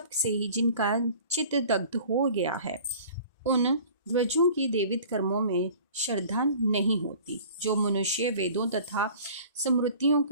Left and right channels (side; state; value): both; inverted; correlation -0.46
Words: से ही जिनका चित्त दग्ध हो गया है, उन ध्वजों की देवित कर्मों में श्रद्धा नहीं होती। जो मनुष्य वेदों तथा स्मृतियों